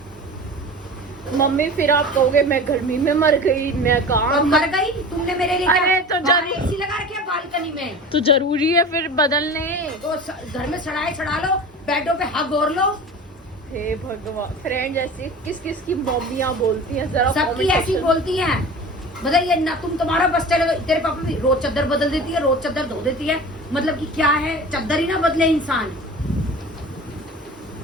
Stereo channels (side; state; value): both; normal; correlation 0.36